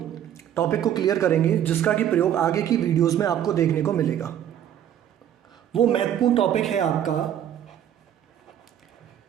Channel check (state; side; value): quieter; left; 10.3 dB